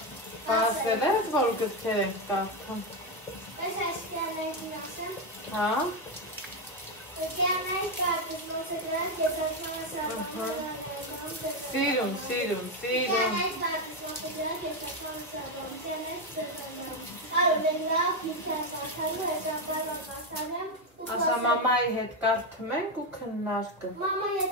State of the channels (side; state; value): both; normal; correlation 0.08